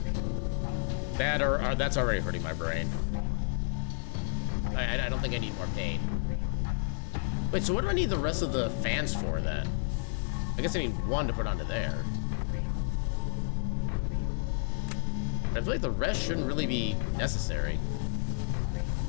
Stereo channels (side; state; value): right; silent; digital silence